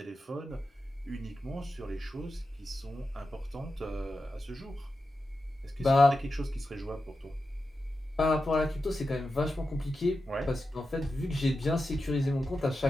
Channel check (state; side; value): normal; both; correlation 0.91